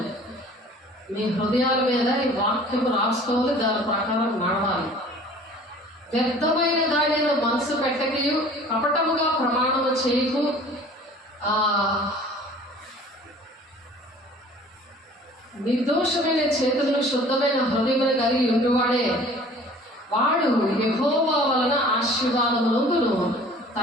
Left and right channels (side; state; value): both; normal; correlation 0.48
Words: మీ హృదయాల మీద ఈ వాక్యం రాసుకోవాలి, దాని ప్రకారం నడవాలి. వ్యర్థమైన దానిలో మనసు పెట్టకయు, కపటముగా ప్రమాణము చేయకు, నిర్దోషమైన చేతులను శుద్ధమైన హృదయమును కలిగి ఉండువాడే వాడు యెహోవా వలన ఆశీర్వాదమునందును,